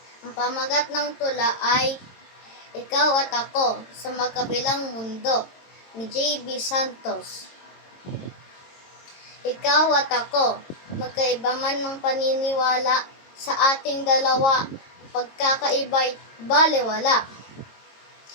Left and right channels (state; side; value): late; right; 22 ms